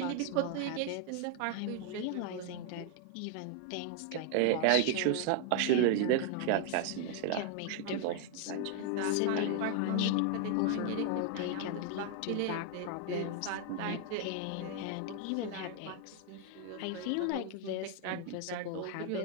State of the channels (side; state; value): both; different; correlation 0.00